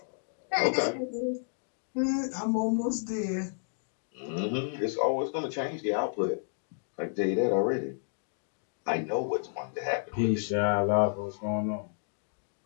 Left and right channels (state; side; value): silent; right; digital silence